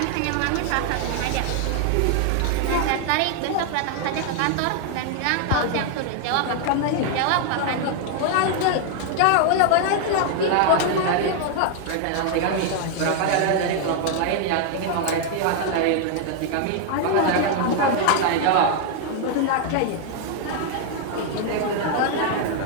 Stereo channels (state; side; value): different; both; correlation 0.00